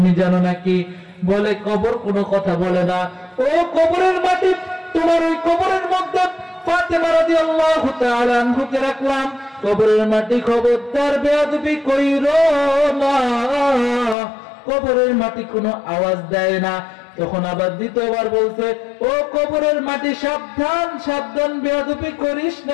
জানো নাকি? বলে, কবর কোনো কথা বলে না। ও কবরের মাটি, তোমার ওই কবরের মধ্যে ফাতেমা রাদিয়াল্লাহু তাআলা আনহুকে রাখলাম। কবরের মাটি, খবরদার বেয়াদবি কইরো না। কবরের মাটি কোনো আওয়াজ দেয় না। তখন আবার দ্বিতীয়বার বলছে, ও কবরের মাটি, সাবধান সাবধান, বেয়াদবি করিস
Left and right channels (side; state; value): right; drops out; at 14.2 s